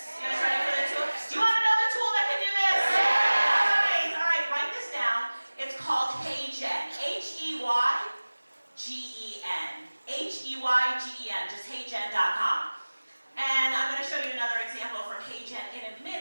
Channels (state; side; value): inverted; both; correlation -1.00